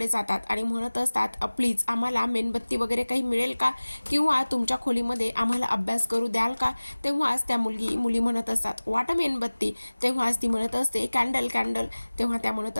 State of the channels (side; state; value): both; inverted; correlation -1.00